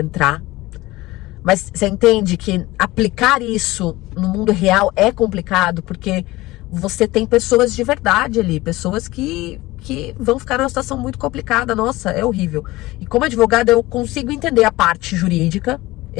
Mas você entende que aplicar isso no mundo real é complicado, porque você tem pessoas de verdade ali, pessoas que vão ficar numa situação muito complicada. Nossa, é horrível. E como advogada, eu consigo entender a parte jurídica,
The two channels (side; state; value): right; quieter; 19.2 dB